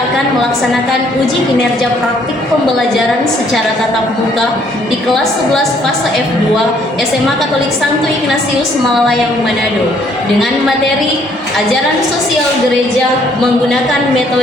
akan melaksanakan uji kinerja praktik pembelajaran secara tatap muka di kelas 11 fase F2 SMA Katolik Santo Ignatius Malalayang Manado dengan materi ajaran sosial gereja menggunakan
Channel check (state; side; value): normal; both; correlation 0.65